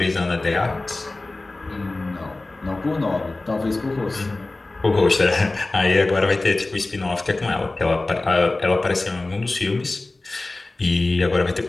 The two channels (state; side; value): quieter; right; 3.1 dB